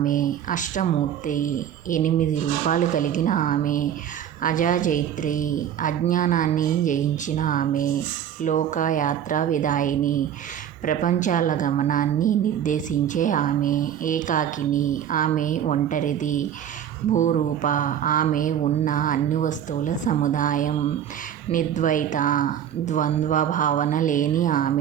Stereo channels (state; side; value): quieter; left; 9.8 dB